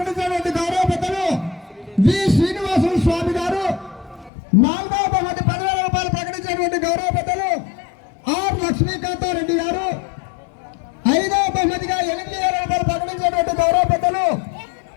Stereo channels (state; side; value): drops out; right; at 4.3 s